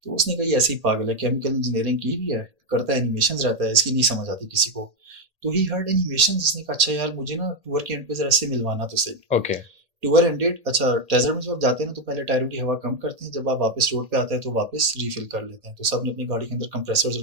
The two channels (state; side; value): late; left; 1.8 ms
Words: तो उसने कहा ये ऐसे ही पागल है, केमिकल इंजीनियरिंग की भी है, करता है एनिमेशंस रहता है, इसकी नहीं समझ आती किसी को। तो ही हर्ड एनिमेशंस, उसने कहा अच्छा यार मुझे ना टूर के एंड पे जरा से मिलवाना तो सही। Okay. टूर एंडेड, अच्छा डेजर्ट में जब आप जाते हैं ना तो पहले टायरों की हवा कम करते हैं, जब आप वापस रोड पे आते हैं तो वापस रिफिल कर लेते हैं। तो सब ने अपनी गाड़ी के अंदर कंप्रेसर्स